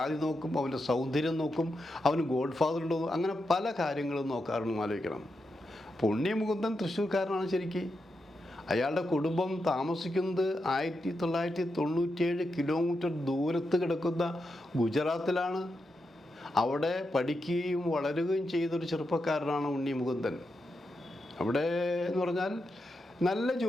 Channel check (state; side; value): normal; both; correlation 0.86